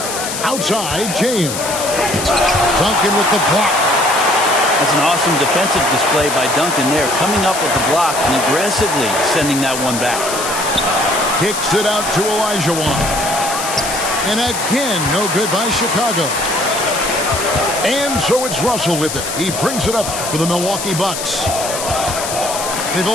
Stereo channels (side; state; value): left; noise; hiss, 5 dB below the sound